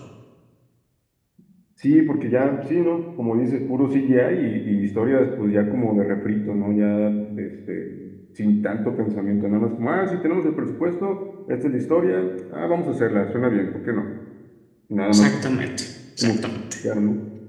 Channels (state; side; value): identical; both; correlation 1.00